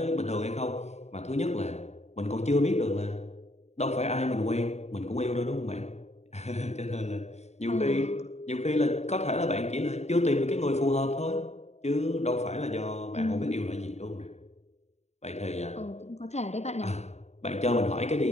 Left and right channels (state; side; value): late; right; 0.32 ms